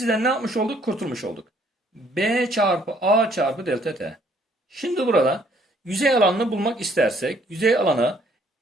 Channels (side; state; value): both; normal; correlation 0.64